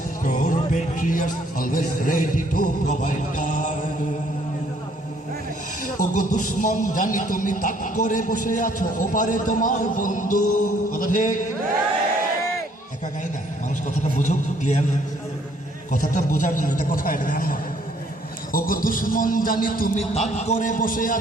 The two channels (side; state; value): both; normal; correlation 0.64